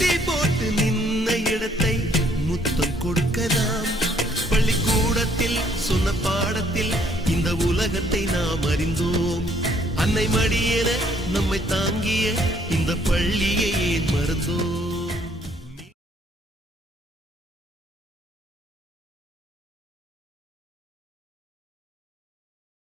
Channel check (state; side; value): normal; both; correlation 0.65